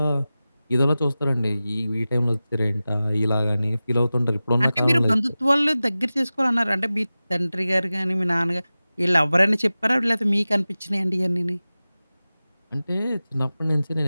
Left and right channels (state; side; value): inverted; both; correlation -0.96